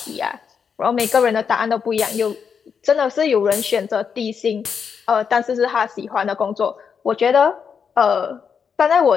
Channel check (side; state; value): right; quieter; 6.6 dB